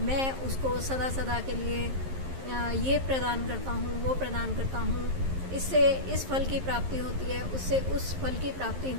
मैं उसको सदा सदा के लिए ये प्रदान करता हूँ, वो प्रदान करता हूँ। इससे इस फल की प्राप्ति होती है, उससे उस फल की प्राप्ति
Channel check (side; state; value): left; late; 11 ms